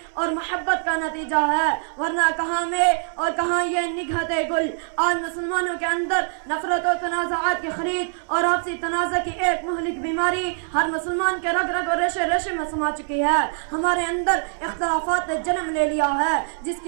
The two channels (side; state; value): left; silent; 63 dB below the other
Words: اور محبت کا نتیجہ ہے، ورنہ کہاں میں اور کہاں یہ نگہتے گل. آج مسلمانوں کے اندر نفرت و تنازعات کی خرید اور آپسی تنازع کی ایک مہلک بیماری ہر مسلمان کے رگ رگ اور ریشے ریشے میں سما چکی ہے. ہمارے اندر اختلافات نے جنم لے لیا ہے، جس